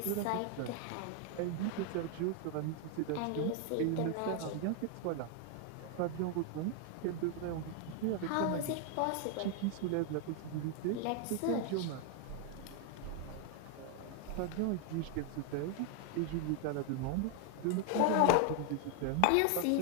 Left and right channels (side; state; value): both; different; correlation 0.00